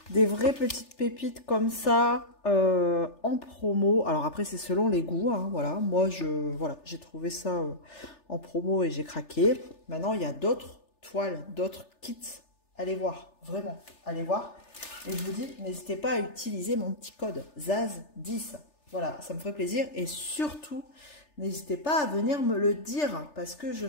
des vraies petites pépites comme ça en promo. Alors après c'est selon les goûts, hein, voilà. Moi j'ai trouvé ça en promo et j'ai craqué. Maintenant il y a d'autres toiles, d'autres kits. Allez voir, vraiment, allez voir. Et je vous dis, n'hésitez pas à utiliser mon petit code ZAZ10. Voilà, ça me ferait plaisir. Et surtout, n'hésitez pas à venir me le dire parce que je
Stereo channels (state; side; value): late; right; 3.4 ms